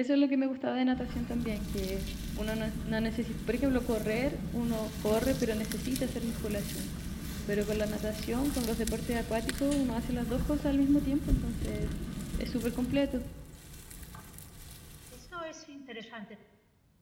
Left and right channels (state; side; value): identical; both; correlation 1.00